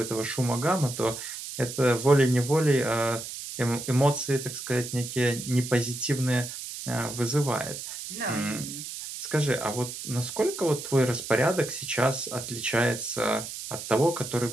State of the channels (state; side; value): noise; right; hiss, 9 dB below the sound